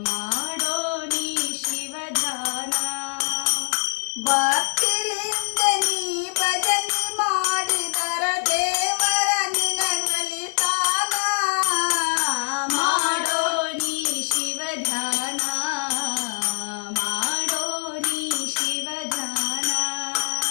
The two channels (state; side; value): silent; right; digital silence